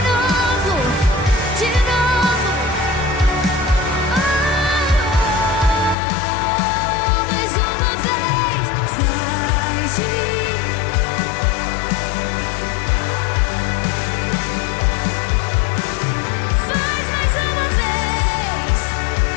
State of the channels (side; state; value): right; drops out; at 6.0 s